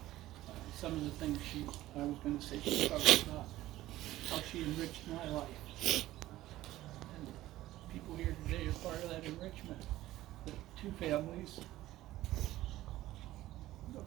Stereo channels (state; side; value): quieter; left; 15.6 dB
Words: some of the things I was going to say she talked about how she enriched my life. And people here today are part of that enrichment. The 2 families,